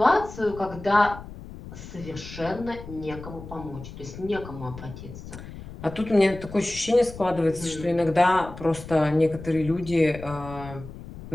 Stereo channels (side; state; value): left; noise; rumble, 14 dB below the sound